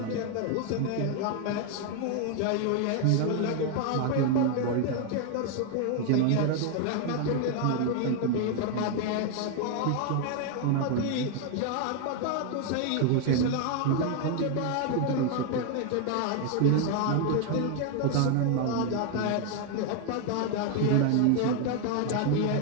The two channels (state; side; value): different; both; correlation 0.01